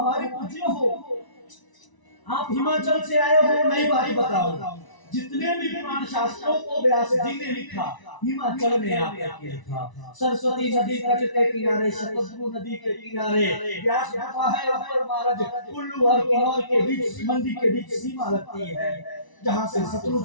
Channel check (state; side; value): late; right; 1.0 ms